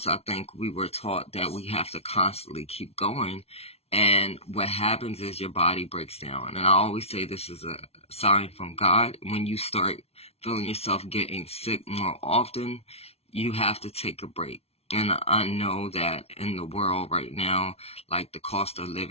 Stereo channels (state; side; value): late; right; 0.30 ms